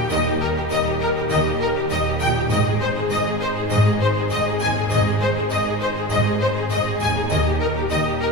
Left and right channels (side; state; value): both; normal; correlation 0.31